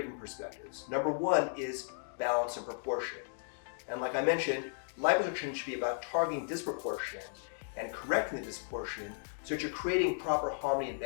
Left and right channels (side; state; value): right; silent; digital silence